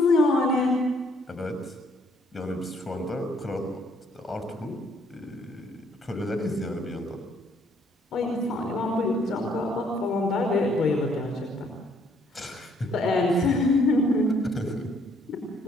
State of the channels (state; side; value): normal; both; correlation 0.66